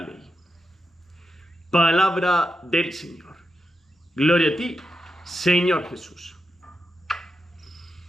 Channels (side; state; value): both; normal; correlation 0.86